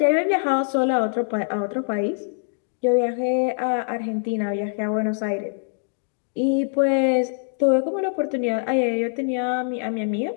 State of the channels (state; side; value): silent; right; digital silence